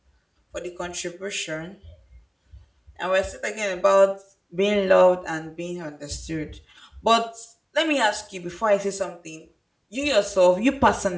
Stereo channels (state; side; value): identical; both; correlation 1.00